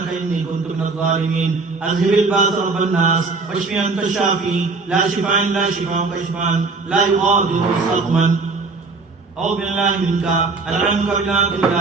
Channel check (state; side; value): quieter; left; 4.0 dB